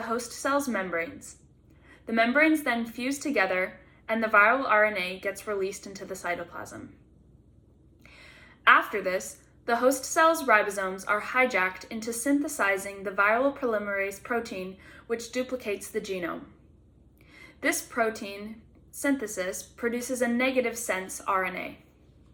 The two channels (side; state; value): both; identical; correlation 1.00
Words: host cell's membranes. The membranes then fuse together and the viral RNA gets released into the cytoplasm. After this, the host cell's ribosomes are hijacked into synthesizing the viral polymerase protein, which duplicates the genome. This protein synthesis produces a negative sense RNA.